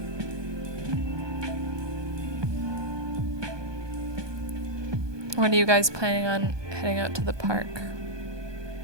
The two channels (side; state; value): left; late; 1.2 ms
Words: When are you guys planning on heading out to the park?